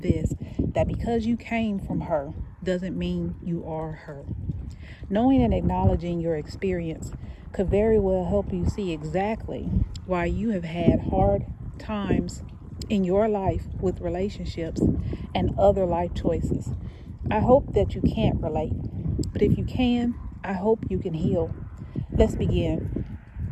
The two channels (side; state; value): both; identical; correlation 1.00